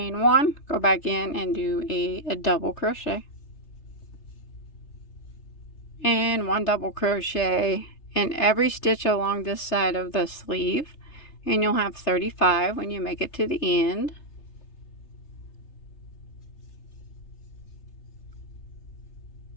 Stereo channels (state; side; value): late; right; 3.3 ms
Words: 1, go back in and do a double crochet, and 1 double crochet in every stitch along this side of the sleeve, and you'll have 35 when you make it to the end.